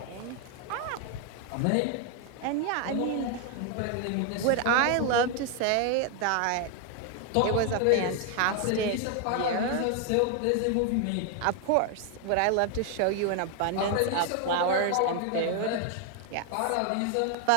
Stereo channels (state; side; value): different; both; correlation 0.01